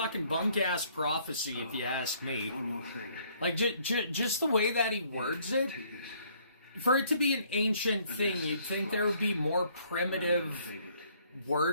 bunk-ass prophecy, if you ask me. One more thing. Like, just the way that he words it, for it to be an ancient thing, you'd think there would be more primitive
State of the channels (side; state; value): both; inverted; correlation -0.63